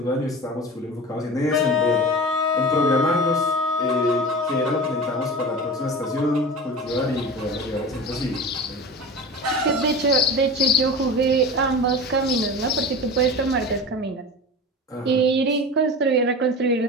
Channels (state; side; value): normal; both; correlation 0.32